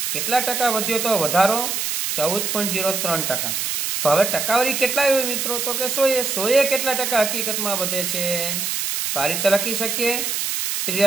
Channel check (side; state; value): right; noise; hiss, 1 dB below the sound